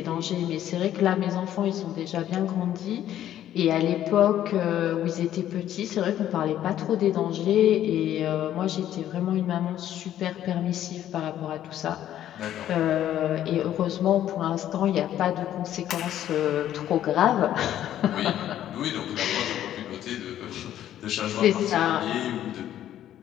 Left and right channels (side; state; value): right; quieter; 11.7 dB